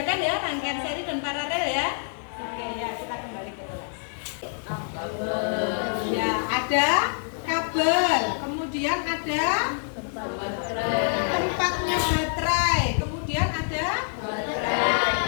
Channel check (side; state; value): right; silent; digital silence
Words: ya rangkaian seri dan paralel ya. Oke ya, kita kembali ke kelas. Ya, ada kabel, kemudian kemudian ada tempatnya baterai, kemudian